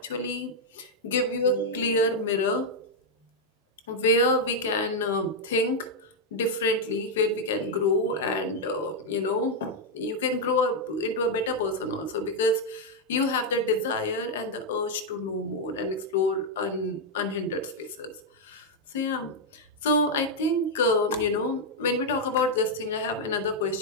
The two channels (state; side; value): normal; both; correlation -0.01